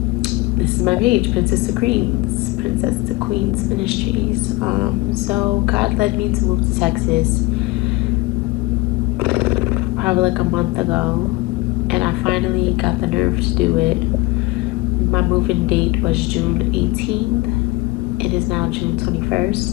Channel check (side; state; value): right; quieter; 21.2 dB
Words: this is my page, Princess to Queens Ministries. So God led me to move to Texas probably like a month ago, and I finally got the nerve to do it. My moving date was June 18th. It is now June